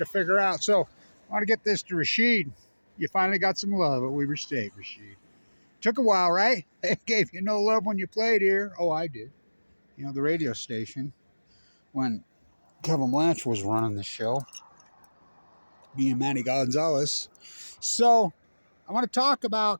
figure out. So I want to get this to Rashid. You finally got some love at Weber State, Rashid. Took a while, right? They gave you no love when you played here. Oh, I did. You know, the radio station, when D Blanch was running the show, me and Manny Gonzalez. So I want to talk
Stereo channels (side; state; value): both; inverted; correlation -1.00